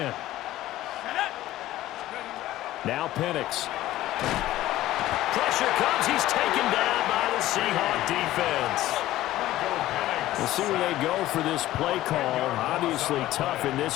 Now Penix. Pressure comes. He's taken down by the Seahawks defense. We'll see where they go for this play call. Obviously tough in this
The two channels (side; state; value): right; quieter; 15.1 dB